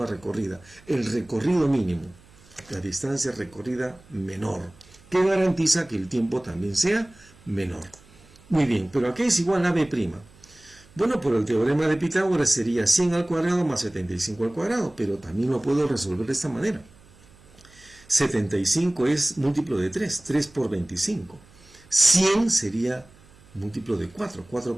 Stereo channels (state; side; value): noise; right; hum, 26 dB below the sound